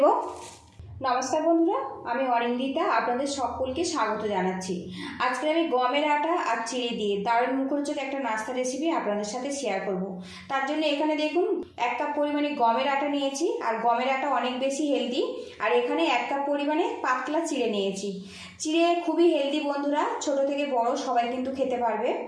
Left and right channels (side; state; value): both; identical; correlation 1.00